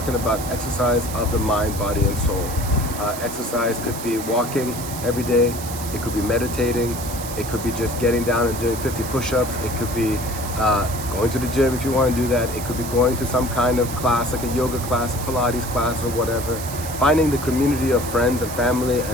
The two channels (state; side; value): noise; right; hiss, 10 dB below the sound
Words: about exercise of the mind, body, and soul. Exercise could be walking every day. It could be meditating. It could be just getting down and doing 50 push-ups. It could be going to the gym if you want to do that. It could be going to some kind of class, like a yoga class, a Pilates class, or whatever. Finding the community of friends and family